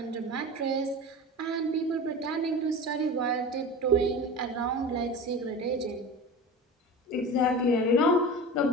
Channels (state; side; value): normal; both; correlation 0.32